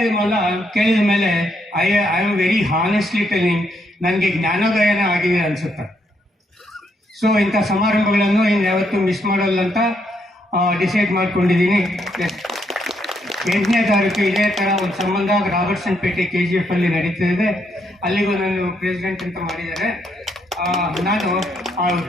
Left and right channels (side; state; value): both; normal; correlation 0.75